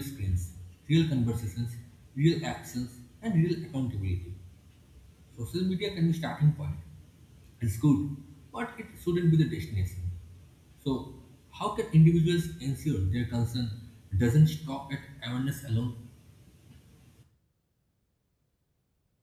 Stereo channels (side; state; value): both; identical; correlation 1.00